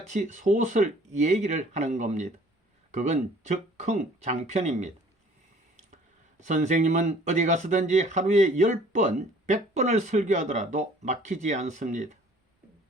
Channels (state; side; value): normal; both; correlation 0.54